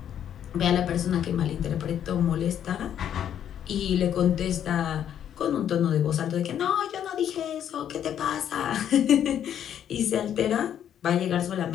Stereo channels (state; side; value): quieter; right; 9.8 dB